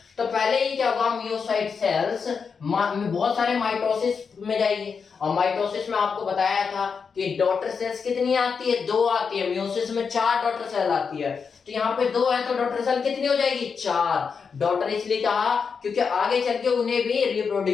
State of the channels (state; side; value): quieter; right; 5.8 dB